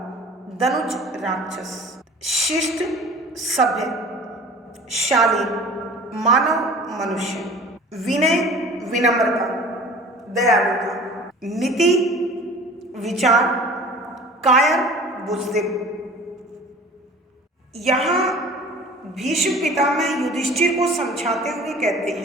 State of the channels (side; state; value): both; normal; correlation 0.44